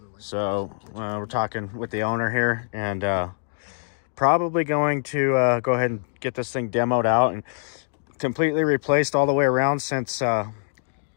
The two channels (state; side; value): silent; right; digital silence